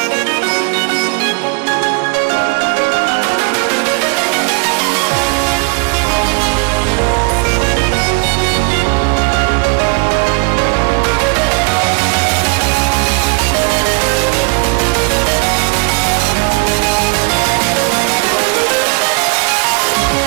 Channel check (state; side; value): quieter; left; 34.2 dB